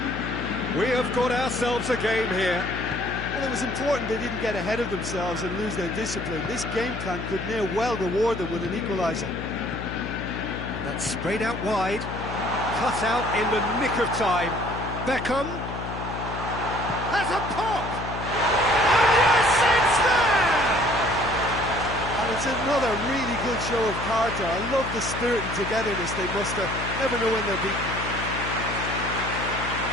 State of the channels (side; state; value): left; noise; hum, 7 dB below the sound